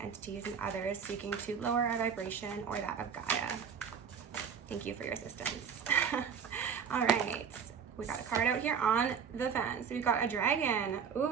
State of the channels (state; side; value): quieter; left; 7.0 dB